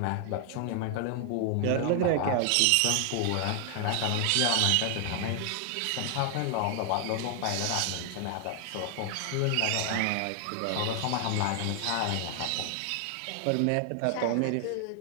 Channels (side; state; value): both; different; correlation 0.00